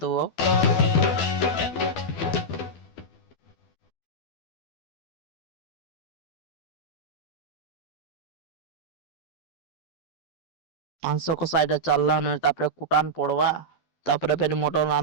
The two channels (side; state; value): right; late; 12 ms